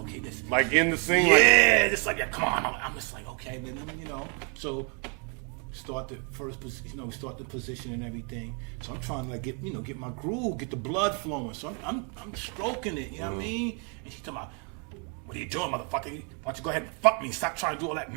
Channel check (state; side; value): quieter; left; 37.5 dB